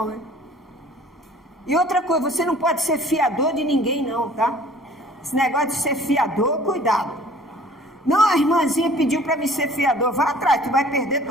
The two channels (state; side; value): normal; both; correlation 0.51